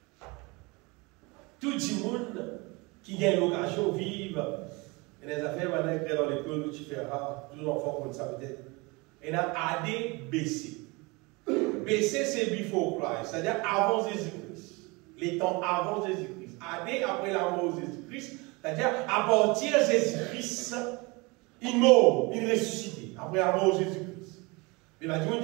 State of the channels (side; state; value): left; quieter; 26.2 dB